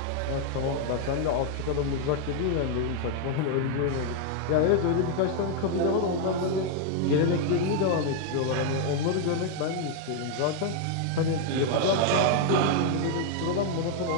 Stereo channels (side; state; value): both; different; correlation 0.00